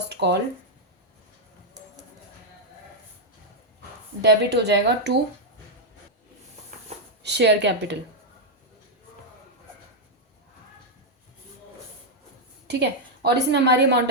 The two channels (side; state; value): both; normal; correlation -0.01